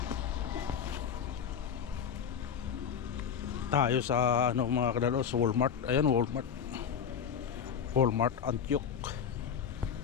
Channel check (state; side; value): quieter; right; 7.6 dB